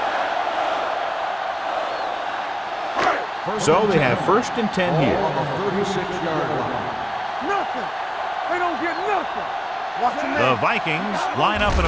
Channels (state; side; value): identical; both; correlation 1.00